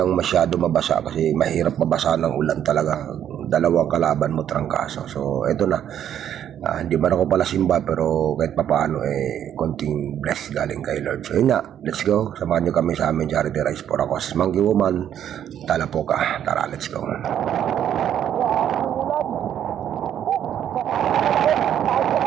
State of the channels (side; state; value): left; quieter; 10.0 dB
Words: masyado mabasa kasi mahirap mabasa ng ulan talaga. Dalawang kalaban mo, trangkaso. So, eto na. Hindi man ako pala simba pero kahit papaano konting bless galing kay Lord. So, yun na. Let's go. Samahan nyo kami sa amin charity rice for ako. Monkey Woman, tala po ka. Tara, let's go.